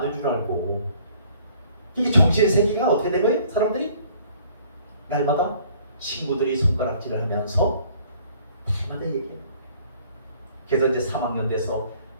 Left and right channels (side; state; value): both; inverted; correlation -0.57